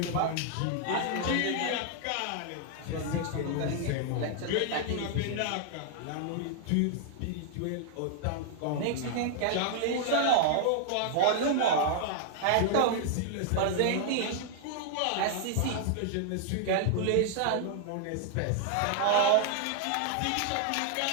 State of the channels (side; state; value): both; different; correlation -0.01